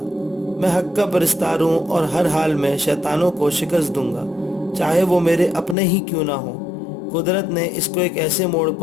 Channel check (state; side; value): drops out; right; at 5.8 s